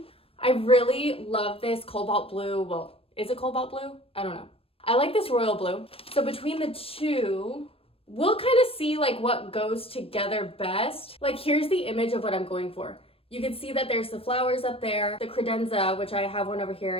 I really love this cobalt blue. Well, is it cobalt blue? I don't know. I like this royal blue. So between the two, we'll kind of see like what goes together best. Like, here's the image of what I'm going for. You can see that there's the flowers up there, the credenza, which I have one over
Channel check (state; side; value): late; right; 0.28 ms